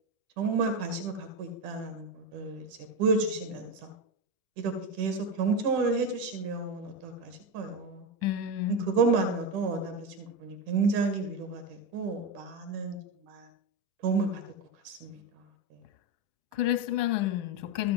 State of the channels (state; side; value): late; left; 10 ms